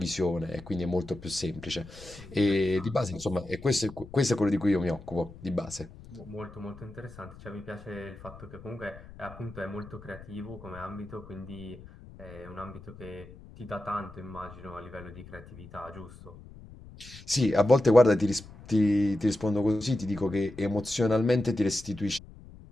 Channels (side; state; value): left; noise; rumble, 18 dB below the sound